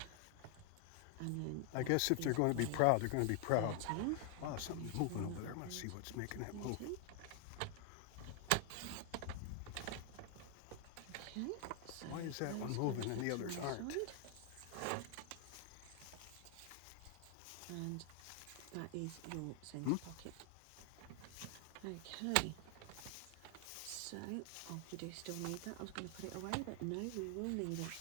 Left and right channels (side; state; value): both; different; correlation 0.00